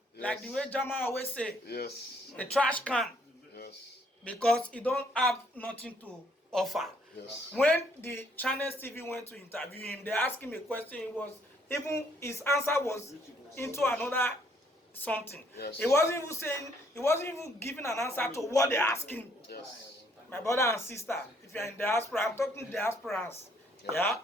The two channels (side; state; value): both; normal; correlation 0.67